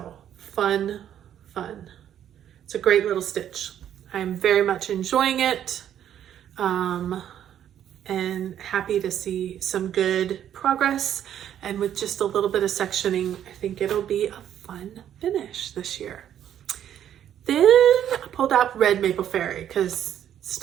fun. It's a great little stitch. I'm very much enjoying it. And happy to see some good progress. And with just a little bit of sectioning, I think it'll be a fun finish this year. Then I pulled out Red Maple Fairy because it's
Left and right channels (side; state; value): left; quieter; 10.3 dB